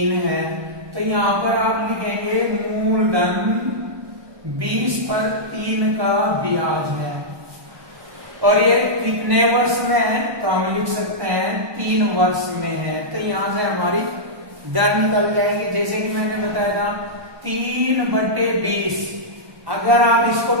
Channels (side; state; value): left; late; 1.2 ms